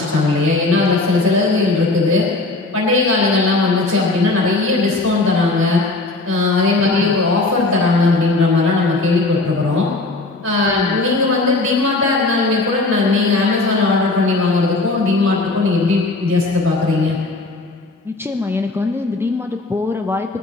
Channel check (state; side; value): quieter; right; 3.2 dB